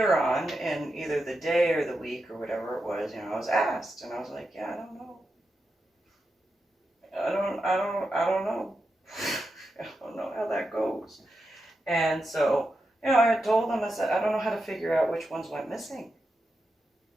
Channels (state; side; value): normal; both; correlation 0.88